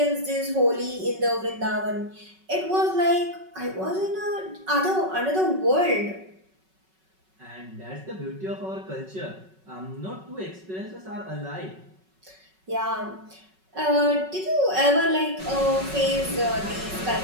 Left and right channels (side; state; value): left; late; 5.3 ms